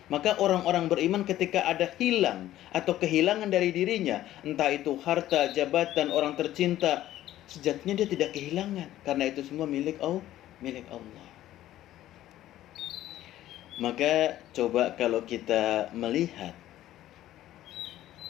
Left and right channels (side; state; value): right; quieter; 13.7 dB